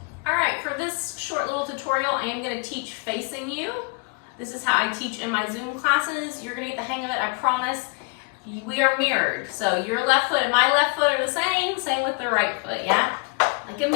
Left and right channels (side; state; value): right; quieter; 32.7 dB